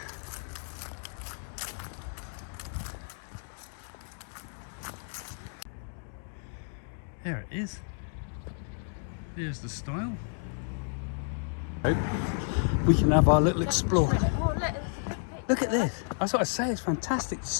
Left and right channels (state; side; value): silent; right; 57 dB below the other